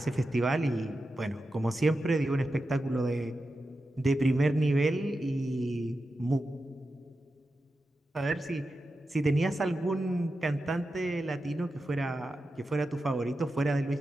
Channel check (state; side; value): normal; both; correlation 0.90